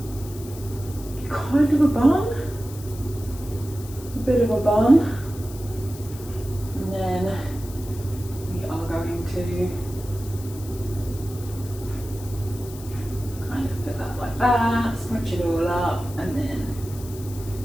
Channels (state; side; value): noise; left; hiss, 17 dB below the sound